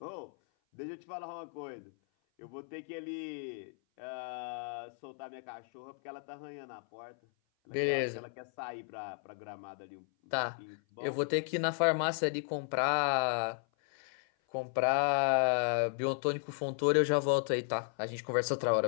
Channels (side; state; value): right; silent; 55 dB below the other